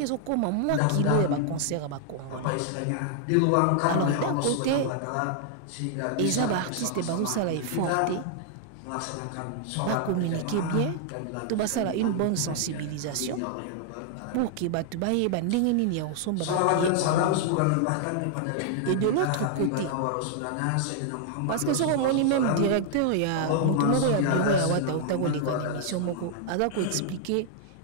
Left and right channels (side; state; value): both; different; correlation -0.01